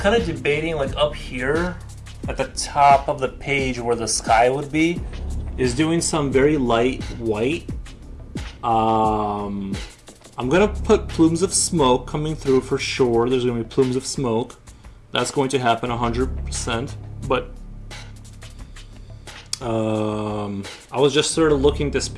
of debating like up here at the top of the page where the sky would be, is doing some very light white. I'm gonna put plumes of smoke coming through for sure. There's gonna be plumes of smoke. That's going to happen 100%. But I was just sort of looking at this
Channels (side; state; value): both; identical; correlation 1.00